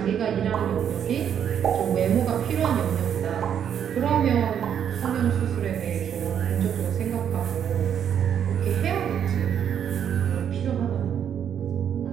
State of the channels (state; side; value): quieter; left; 8.8 dB